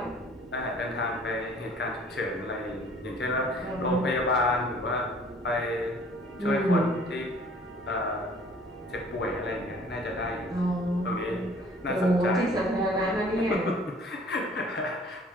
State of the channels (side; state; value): both; normal; correlation 0.53